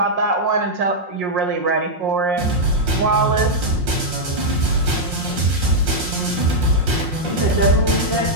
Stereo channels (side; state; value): left; late; 5.6 ms